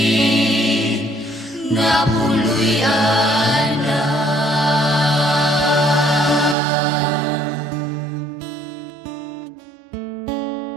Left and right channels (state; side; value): drops out; left; at 6.6 s